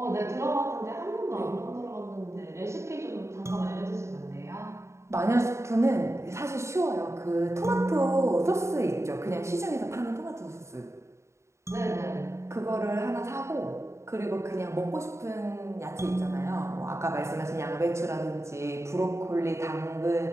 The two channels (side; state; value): left; late; 0.14 ms